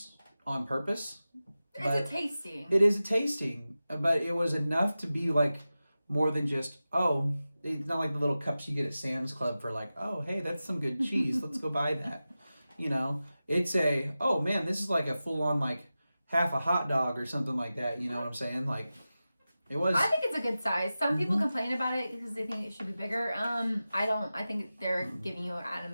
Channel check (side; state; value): both; inverted; correlation -0.94